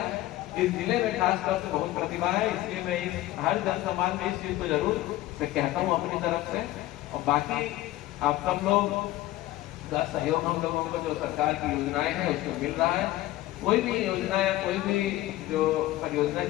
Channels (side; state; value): right; quieter; 16.1 dB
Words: इस जिले में खासतौर से बहुत प्रतिभा है, इसलिए मैं हर जनसंवाद में इस चीज को जरूर से कहता हूँ अपनी तरफ से। और बाकी आप सब लोग का सहयोग हम लोगों को जो सरकार की योजनाएं हैं उसमें मिल रहा है। कोई भी योजना या कोई भी जो परियोजना